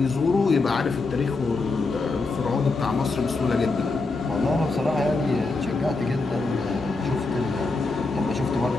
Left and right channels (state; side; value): quieter; right; 3.6 dB